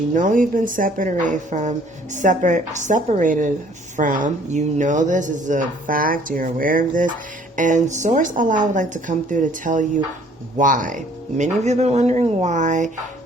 know you've been separated from, you know this is a fact, you're aware of this, and Source Allah would like to come through to tell you why. Many of you have been wondering why.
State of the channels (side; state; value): both; normal; correlation 0.58